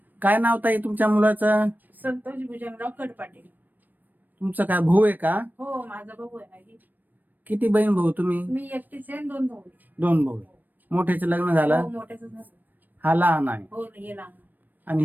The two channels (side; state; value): left; late; 0.088 ms